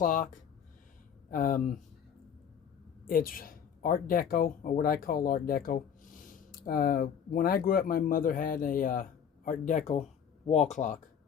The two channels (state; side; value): quieter; right; 7.9 dB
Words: It's Art Deco, or what I call Art Deco. When I grew up, my mother had a Art Deco wall clock.